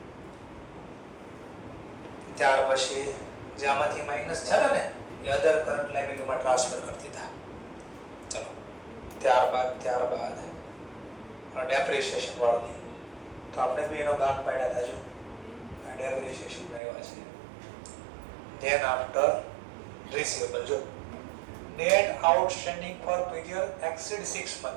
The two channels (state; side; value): drops out; left; at 16.8 s